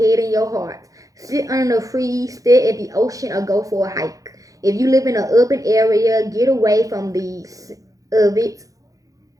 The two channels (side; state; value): left; late; 0.17 ms